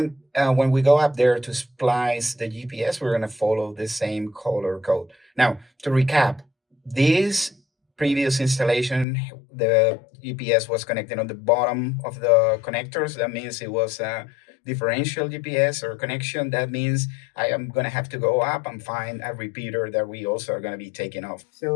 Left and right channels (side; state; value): right; drops out; at 9.1 s